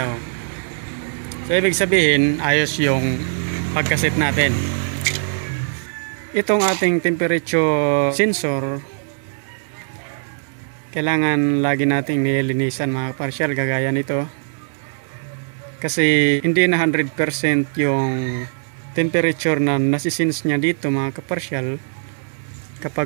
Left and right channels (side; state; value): left; silent; 65 dB below the other